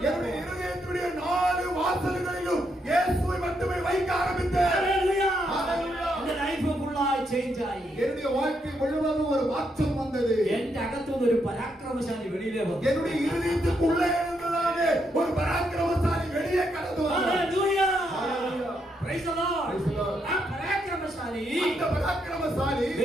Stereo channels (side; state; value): both; normal; correlation 0.78